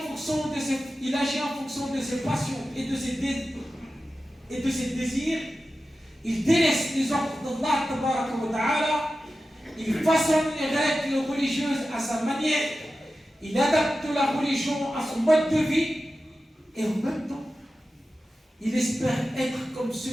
fonction de ses passions et de ses désirs. Il délaisse les ordres d'Allah tabaraka wa ta'ala. Il façonne les règles religieuses à sa manière. Il adapte la religion à son mode de vie. Et en même temps, il espère être comme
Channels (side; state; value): both; normal; correlation 0.93